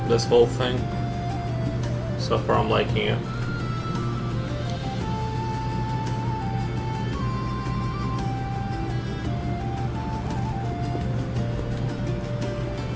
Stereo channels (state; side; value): identical; both; correlation 1.00